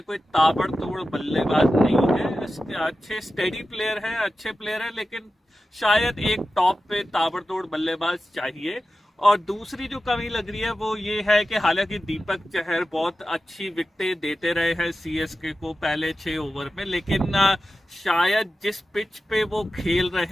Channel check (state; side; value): normal; both; correlation 0.93